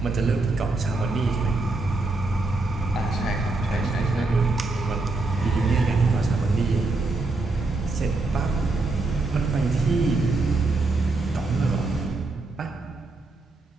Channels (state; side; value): quieter; left; 3.3 dB